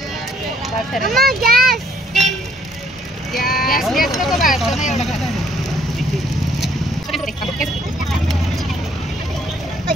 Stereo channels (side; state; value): both; normal; correlation 0.66